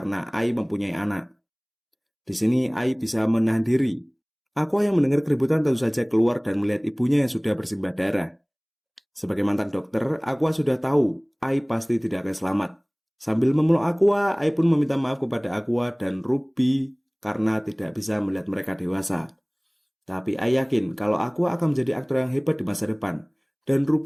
Ai mempunyai anak. Di sini Ai bisa menahan diri. Aqua yang mendengar keributan tentu saja keluar dan melihat ibunya yang sudah bersimbah darah. Sebagai mantan dokter, Aqua sudah tahu Ai pasti tidak akan selamat. Sambil memeluk Aqua, Ai pun meminta maaf kepada Aqua dan Ruby karena tidak bisa melihat mereka dewasa. Tapi Ai yakin kalau Aqua akan menjadi aktor yang hebat di masa depan, dan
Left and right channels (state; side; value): identical; both; correlation 1.00